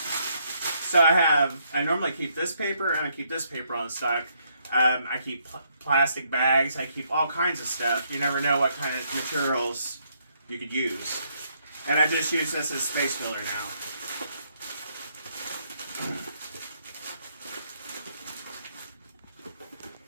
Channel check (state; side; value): inverted; both; correlation -0.73